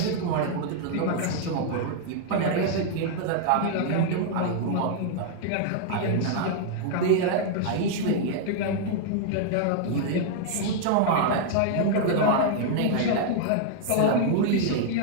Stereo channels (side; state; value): both; different; correlation -0.01